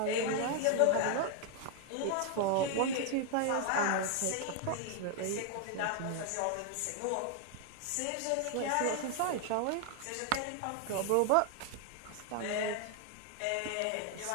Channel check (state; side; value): different; both; correlation 0.00